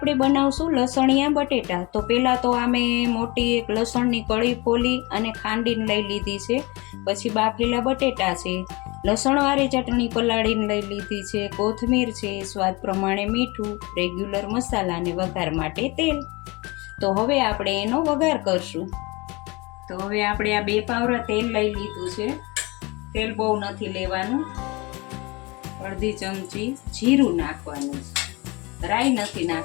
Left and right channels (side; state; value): right; quieter; 25.3 dB